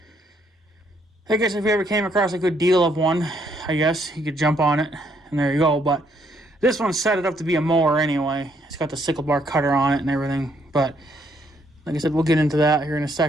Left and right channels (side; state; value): both; normal; correlation 0.70